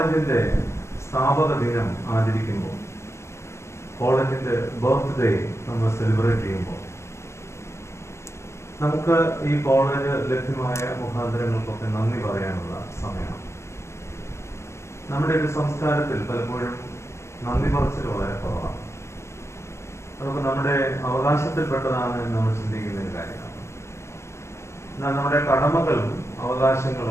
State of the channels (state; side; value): late; right; 0.13 ms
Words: സ്ഥാപക ദിനം ആചരിക്കുമ്പോൾ, കോളേജിന്റെ ബർത്ത്ഡേ നമ്മൾ സെലിബ്രേറ്റ് ചെയ്യുമ്പോൾ, നമുക്ക് ഈ കോളേജ് ലഭ്യമായ മുഖാന്തരങ്ങൾക്കൊക്കെ നന്ദി പറയാനുള്ള സമയമാണ്. നമ്മുടെ ഒരു സംസ്കാരത്തിൽ പലപ്പോഴും നന്ദി പറച്ചിൽ വളരെ കുറവാണ്. അതൊക്കെ നമ്മുടെ അവകാശത്തിൽപ്പെട്ടതാണ് എന്ന് നമ്മൾ ചിന്തിക്കുന്ന ഒരു കാര്യമാണ്. എന്നാൽ നമ്മുടെ കടമകളും